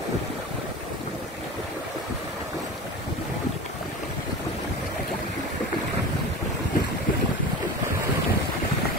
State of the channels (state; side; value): normal; both; correlation 0.31